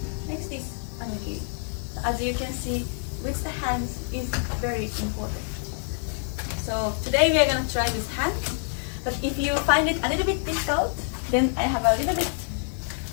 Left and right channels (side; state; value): right; silent; 56 dB below the other